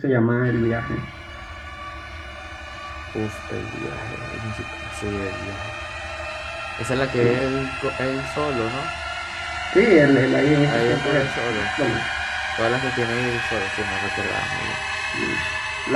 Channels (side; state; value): both; identical; correlation 1.00